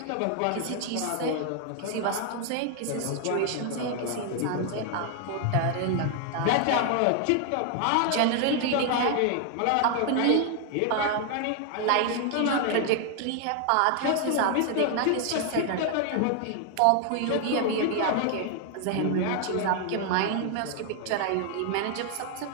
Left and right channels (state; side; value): different; both; correlation 0.00